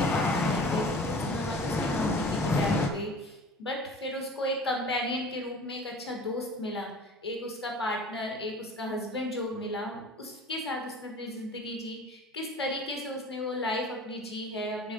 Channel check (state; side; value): normal; both; correlation 0.42